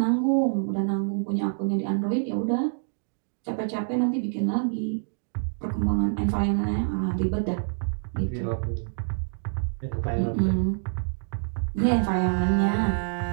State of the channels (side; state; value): left; silent; digital silence